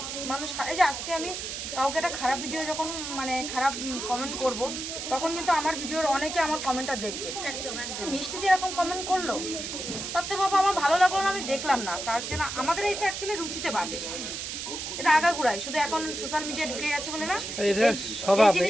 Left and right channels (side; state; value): right; noise; hiss, 6 dB below the sound